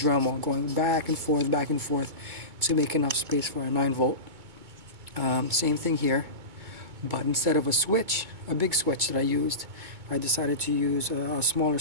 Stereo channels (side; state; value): left; late; 2.2 ms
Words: going back and forth to make enough space for a 9V. Same thing here, but instead of a big switch that I used, I decided to use a smaller